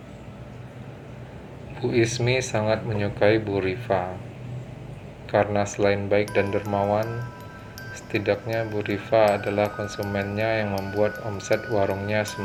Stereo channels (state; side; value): identical; both; correlation 1.00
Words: Bu Ismi sangat menyukai Bu Rifa, karena selain baik dan dermawan, setidaknya Bu Rifa adalah konsumennya yang membuat omset warungnya